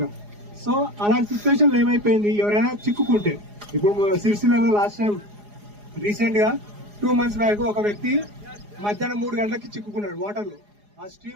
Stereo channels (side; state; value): left; late; 4.8 ms